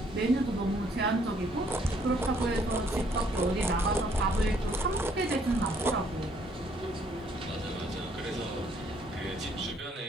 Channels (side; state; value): both; normal; correlation 0.66